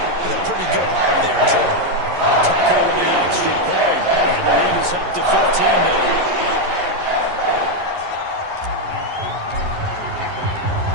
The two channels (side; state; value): left; late; 11 ms